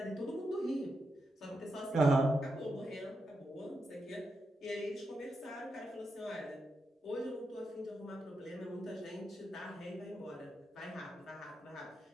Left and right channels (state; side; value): normal; both; correlation 0.85